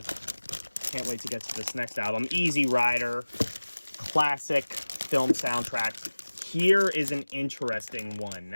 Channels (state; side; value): inverted; both; correlation -1.00